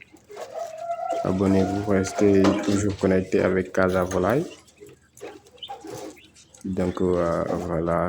Abonnez-vous, restez toujours connecté avec Casa Volaille. Donc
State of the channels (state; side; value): identical; both; correlation 1.00